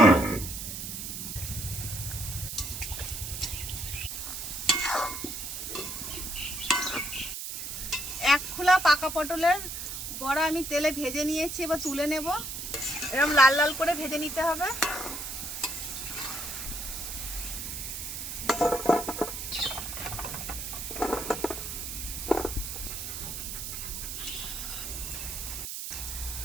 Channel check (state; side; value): noise; right; hiss, 6 dB below the sound